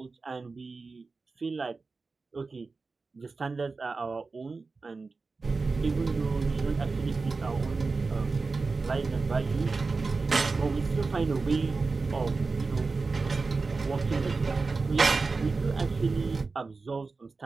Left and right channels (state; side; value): quieter; left; 4.1 dB